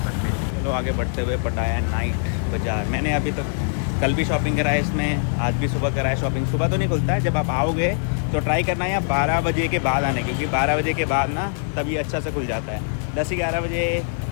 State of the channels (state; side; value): silent; right; digital silence